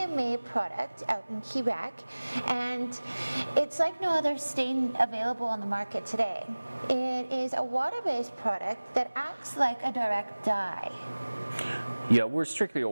product out in Quebec, and it's like no other stain available on the market today. It is a water-based product that acts like a direct dye. Yeah, we're strictly a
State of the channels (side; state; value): both; inverted; correlation -1.00